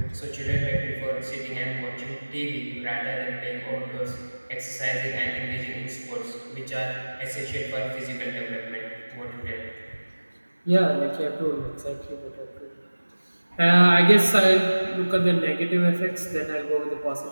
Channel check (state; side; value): inverted; both; correlation -1.00